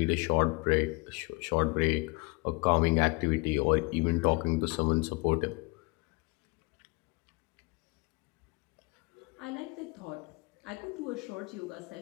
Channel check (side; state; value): right; quieter; 27.8 dB